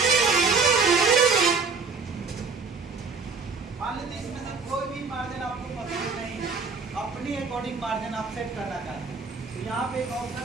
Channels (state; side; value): quieter; left; 4.7 dB